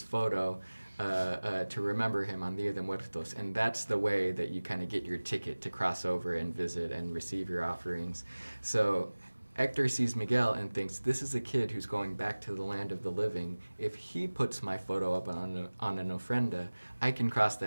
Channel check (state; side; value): inverted; both; correlation -1.00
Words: photo to remember him on Dia de Muertos, and that's the way that you kind of get your ticket to cross over and visit and receive your offerings. So Hector sees Miguel and thinks, this is a kid who's going back to the land of the living. If he puts my photo up on an ofrenda, I can cross